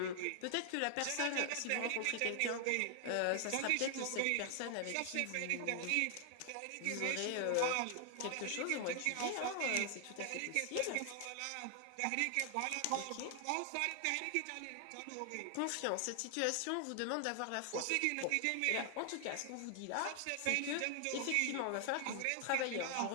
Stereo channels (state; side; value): different; both; correlation 0.00